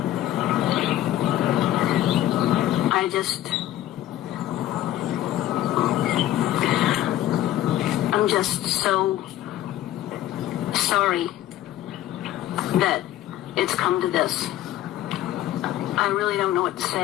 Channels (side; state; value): right; quieter; 13.5 dB